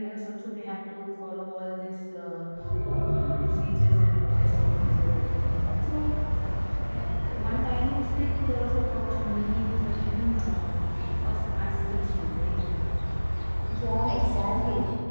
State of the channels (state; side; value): inverted; both; correlation -1.00